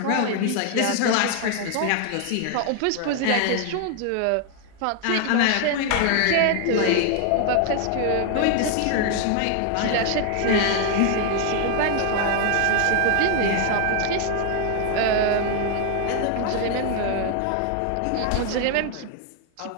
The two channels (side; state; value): both; different; correlation 0.00